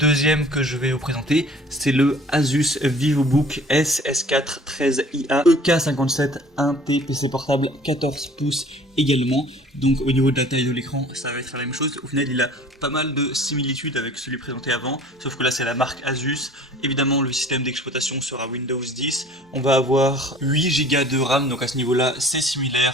que je vais vous présenter, c'est le Asus VivoBook S4 13IA EK57 1T PC portable 14 pouces également. Donc au niveau de la taille de l'écran, ça va être la même chose. Au final, il a pas mal de similitudes avec celui présenté avant, sauf que là c'est la marque Asus. Évidemment, le système d'exploitation sera Windows 10. On va avoir 8 Go de RAM, donc à ce niveau-là, c'est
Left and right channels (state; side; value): normal; both; correlation 0.49